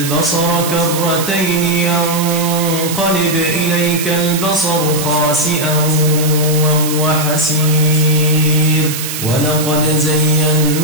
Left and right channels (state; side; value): noise; right; hiss, 6 dB below the sound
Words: كرتين ينقلب إليك البصر خاسئا وهو حسير ولقد زينا